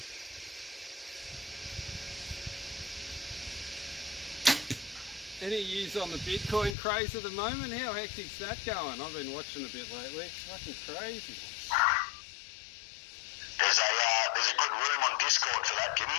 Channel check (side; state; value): right; drops out; at 6.8 s